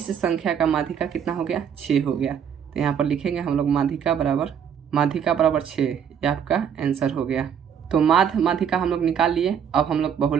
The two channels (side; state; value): left; quieter; 8.0 dB